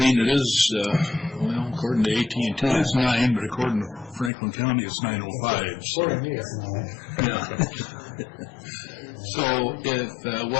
It is, well, according to AT&T, it's 9, but according to Franklin County, it's 9:05. So, yeah. So,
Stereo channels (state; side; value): drops out; right; at 4.3 s